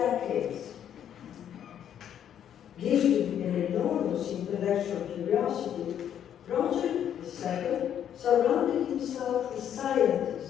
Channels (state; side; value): quieter; right; 9.7 dB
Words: Gifted with an enormous intellectual curiosity, Roger II surrounded himself with